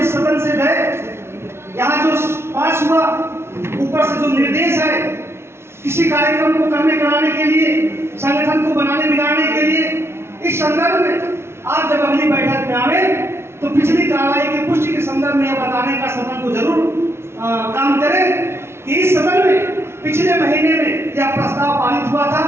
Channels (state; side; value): late; left; 0.12 ms